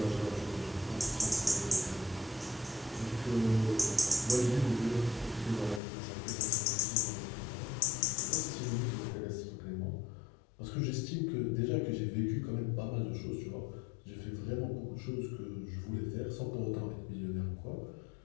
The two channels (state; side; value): drops out; right; at 5.8 s